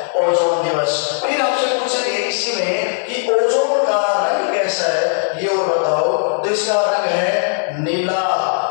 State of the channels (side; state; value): right; silent; 65 dB below the other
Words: ओजोन दिवस। फिर आपसे पूछेंगे इसी में कि ओजोन का रंग कैसा है, ये और बताओ। तो इसका रंग है नीला।